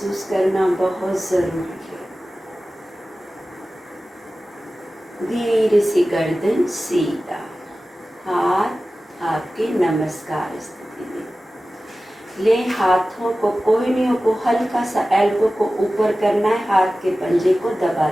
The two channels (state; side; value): normal; both; correlation 0.96